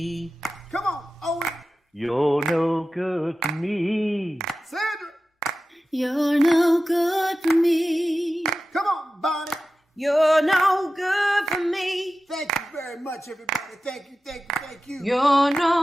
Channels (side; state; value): both; normal; correlation 0.94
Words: Come on, Owen. You're no good for me. Sandra. You're no good for me. Come on, Bonnie. You're no good for me. Thank you very much, everybody. Thank you. You're